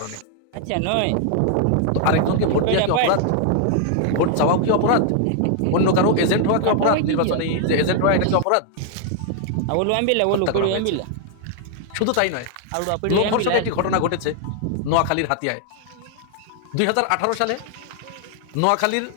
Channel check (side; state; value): both; different; correlation 0.00